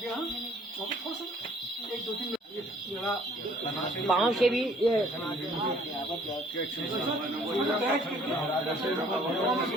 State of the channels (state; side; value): normal; both; correlation 0.57